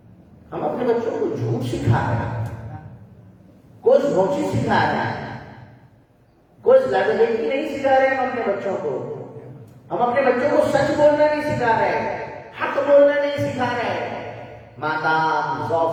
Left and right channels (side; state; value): both; identical; correlation 1.00